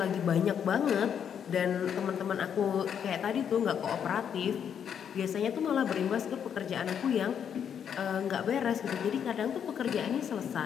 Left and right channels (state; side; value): quieter; right; 8.2 dB